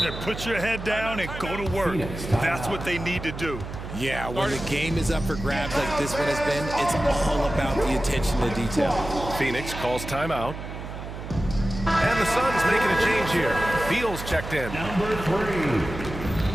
Put your head down and go to work. That's what they need to do. Yeah, when the game is up for grabs like this one has been, it's all about the attention to detail. Phoenix calls timeout. And the Suns making a change here. Beal's checked in.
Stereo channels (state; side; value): noise; right; hum, 9 dB below the sound